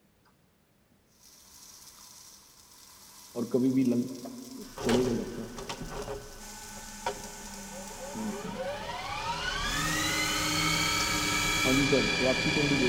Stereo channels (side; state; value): both; identical; correlation 1.00